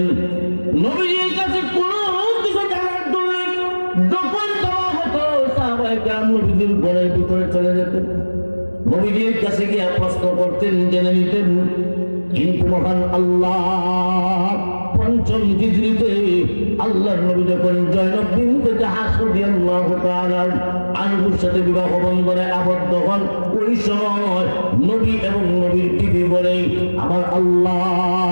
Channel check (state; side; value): inverted; both; correlation -1.00